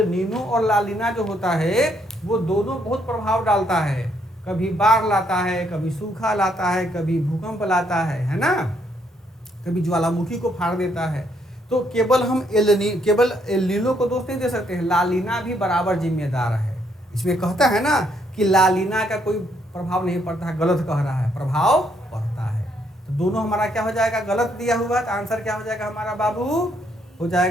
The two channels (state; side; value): normal; both; correlation 0.72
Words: नीनो और लानीना जो होता है वो दोनों बहुत प्रभाव डालता है। कभी बाढ़ लाता है, कभी सूखा लाता है, कभी भूकंप लाता है ना, कभी ज्वालामुखी को फाड़ देता है। तो केवल हम केवल एल नीनो को दोष नहीं दे सकते हैं, लालीना भी बराबर जिम्मेदार है। इसमें कहता है ना कि लालीना का कोई प्रभाव नहीं पड़ता है, गलत कह रहा है, प्रभाव पड़ता है। तो दोनों हमारा क्या हो जाएगा, गलत दिया हुआ। तो आंसर क्या हो जाएगा हमारा बाबू, हो